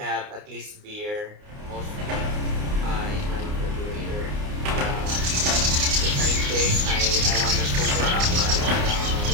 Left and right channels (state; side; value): late; left; 29 ms